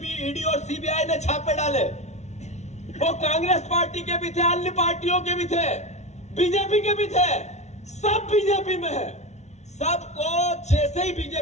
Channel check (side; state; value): right; late; 0.32 ms